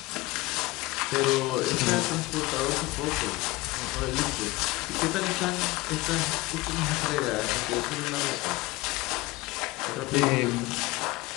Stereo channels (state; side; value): quieter; right; 21.1 dB